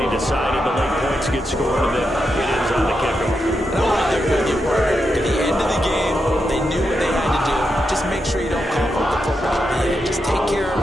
decided. The late points get scored, and then it ends on the kickoff. I'm right there with you, Parker. At the end of the game, they knew what they had to do. Just make sure you don't cough up the football at the end. Just take care of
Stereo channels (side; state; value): both; normal; correlation 0.85